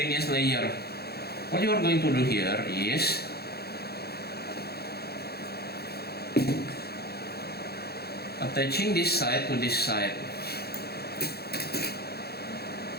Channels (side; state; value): right; late; 0.46 ms